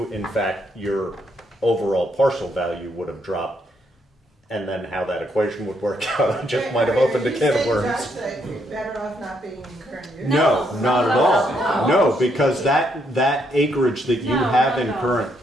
in fact, your overall parcel value would have dropped. And then how that equation would work out, I just might have opened a can of worms. Are you saying, Josh, that you're better off not being in current use? No, not at all. No, because that acreage that you have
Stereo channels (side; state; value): both; normal; correlation 0.75